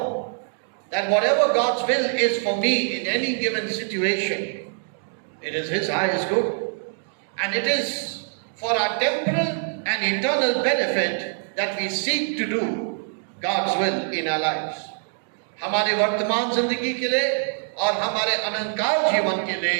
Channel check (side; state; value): left; silent; 62 dB below the other